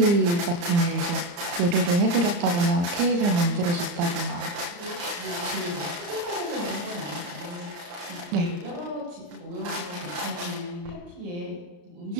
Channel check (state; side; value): late; left; 34 ms